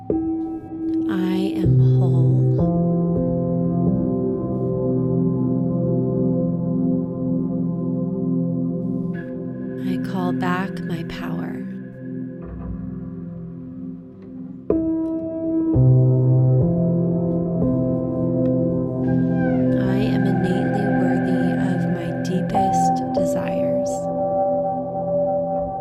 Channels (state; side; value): identical; both; correlation 1.00